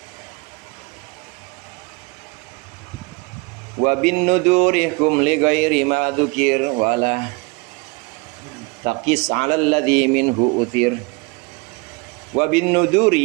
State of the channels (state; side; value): quieter; left; 28.4 dB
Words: Wa bin nudurihum li ghairi ma dzukir wala taqis 'ala alladhi minhu uthir. Wa bin